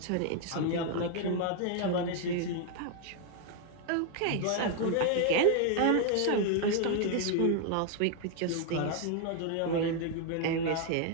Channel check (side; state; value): both; different; correlation 0.00